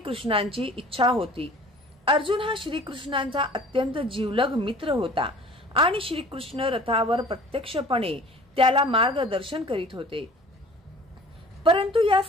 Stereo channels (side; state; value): both; normal; correlation 0.47